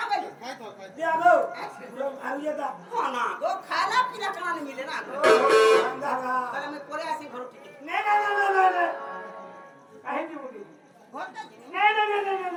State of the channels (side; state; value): both; identical; correlation 1.00